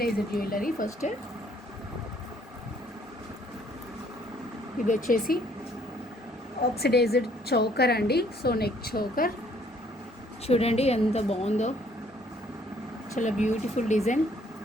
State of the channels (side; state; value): both; normal; correlation 0.62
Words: jewellery. ఫస్ట్ ఇది వచ్చేసి ఆక్సిడైజ్డ్ చౌకర్ అండి. సో నెక్ చౌకర్ చూడండి ఎంత బాగుందో, చాలా బ్యూటిఫుల్ డిజైన్.